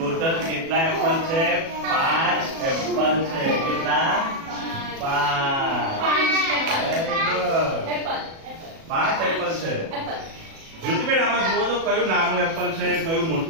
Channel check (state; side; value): late; left; 37 ms